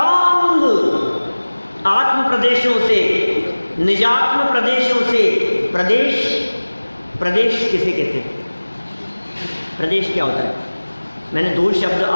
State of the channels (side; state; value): both; inverted; correlation -1.00